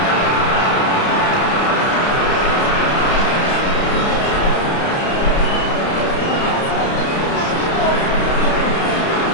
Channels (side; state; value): right; late; 30 ms